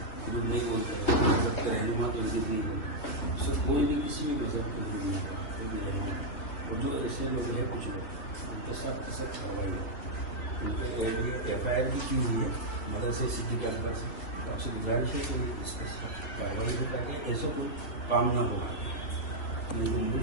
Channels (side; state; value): right; late; 3.2 ms